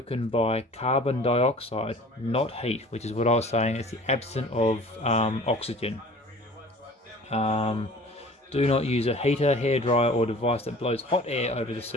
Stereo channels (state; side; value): normal; both; correlation 0.45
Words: by carbon dioxide, not heat, which is what I was saying. It's the absence of oxygen. Do not use a heater, hairdryer or device that blows hot air over the